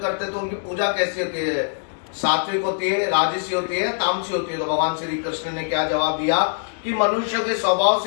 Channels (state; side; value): silent; right; digital silence